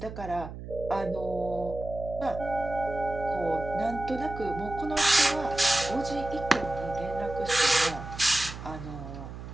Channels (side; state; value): right; noise; hum, 11 dB below the sound